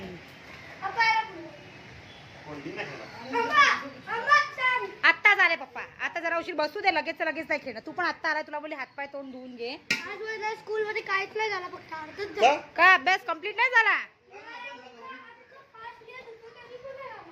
कोणती नाही खेळला. आत्ता झाले पप्पा, आता जरा उशीर बसू दे, लगेच लगेच नाही खेळणं. तू पण आत्ता आलाय, तुला बोलली हातपाय तोंड धुवून घे. आज माझ्या स्कूल मध्ये काहीच नाही झालं, फक्त अर्धच का? झालं. का अभ्यास कम्प्लीट नाही झाला?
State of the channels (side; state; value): both; identical; correlation 1.00